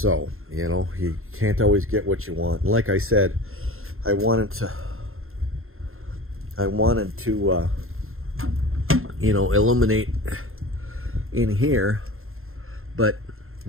you know, you can't always get what you want. And like I said, I wanted to you know, illuminate in here, but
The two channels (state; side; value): late; left; 0.61 ms